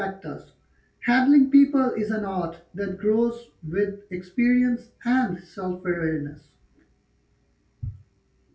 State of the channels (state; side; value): identical; both; correlation 1.00